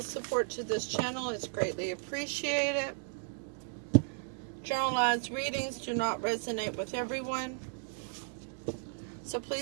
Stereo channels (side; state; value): left; silent; digital silence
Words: support to this channel is greatly appreciated. Generalized readings do not resonate with everyone, so